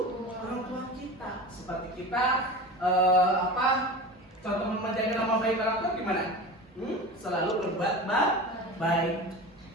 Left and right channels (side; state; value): both; normal; correlation 0.31